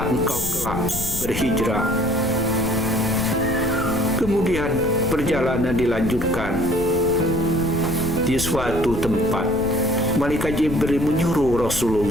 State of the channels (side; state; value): left; noise; rumble, 8 dB below the sound